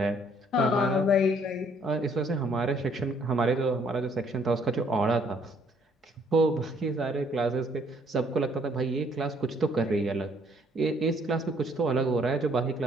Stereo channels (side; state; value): both; normal; correlation 0.64